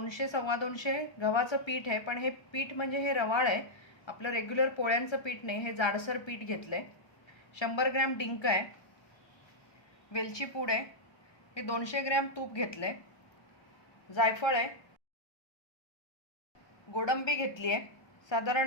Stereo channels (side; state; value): right; late; 1.3 ms